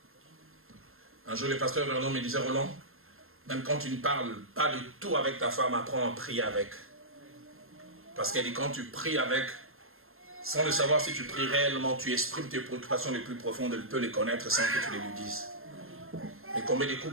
Un jour, le pasteur Vernon me disait, Roland, même quand tu ne parles pas de tout avec ta femme, apprends à prier avec. Parce qu'elle dit, quand tu pries avec, sans le savoir si tu pries réellement, tu exprimes tes préoccupations les plus profondes, elle peut les connaître sans que tu les lui dises. Mais combien de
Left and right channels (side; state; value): left; late; 0.61 ms